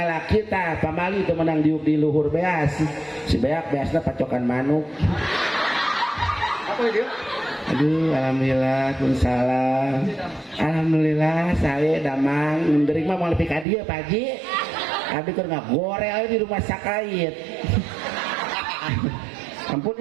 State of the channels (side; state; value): left; drops out; at 13.7 s